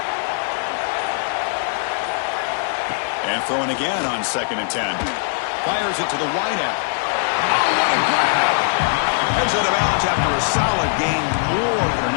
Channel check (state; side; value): silent; right; digital silence